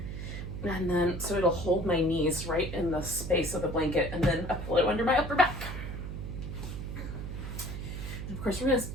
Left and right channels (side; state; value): right; noise; hum, 6 dB below the sound